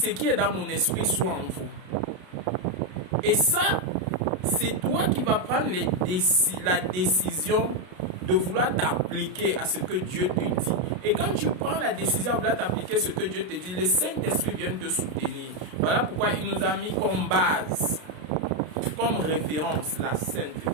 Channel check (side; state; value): left; late; 33 ms